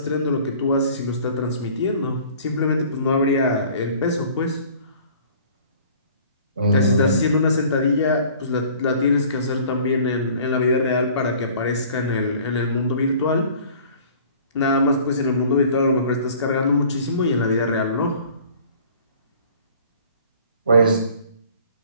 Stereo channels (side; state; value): both; inverted; correlation -0.50